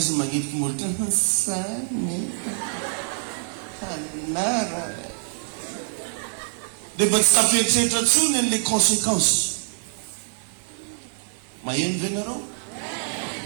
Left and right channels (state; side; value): silent; left; digital silence